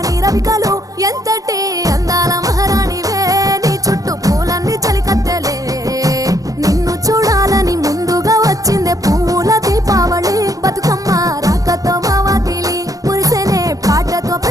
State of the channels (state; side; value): late; left; 0.17 ms